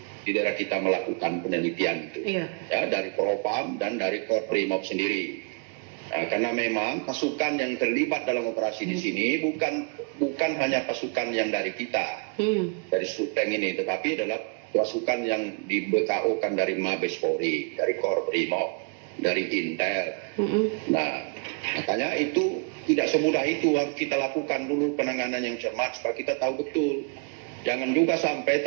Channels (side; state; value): left; quieter; 35.5 dB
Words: daerah kita melakukan penelitian itu, ya, dari Propam dan dari Korprimob sendiri. Nah, karena memang pasukan yang terlibat dalam operasi di sini bukan hanya pasukan yang dari kita, dari Suteng ini, tetapi adalah pasukan yang di BKO-kan dari Mabes Polri, dari Korprimob, dari Intel. Nah, makanya itu tidak semudah itu. Harus kita lakukan dulu penanganan yang cermat supaya kita tahu betul. Jangan juga sampai